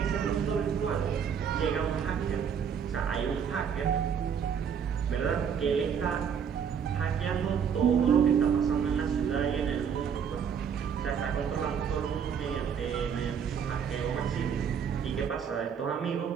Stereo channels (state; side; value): quieter; left; 7.4 dB